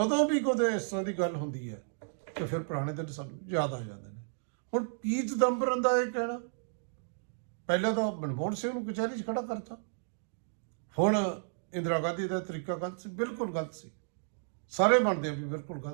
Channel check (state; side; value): silent; left; digital silence